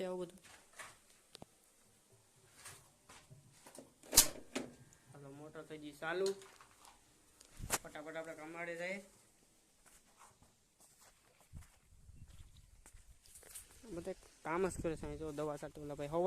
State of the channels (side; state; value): both; identical; correlation 1.00